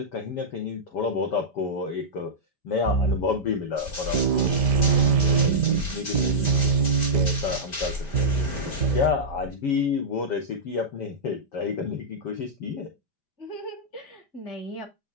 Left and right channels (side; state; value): right; late; 5.1 ms